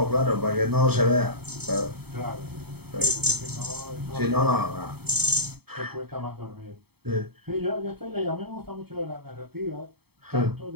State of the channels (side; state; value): left; late; 0.97 ms